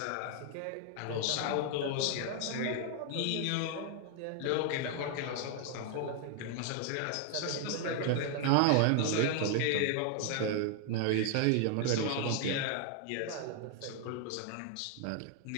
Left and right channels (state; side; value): different; both; correlation 0.00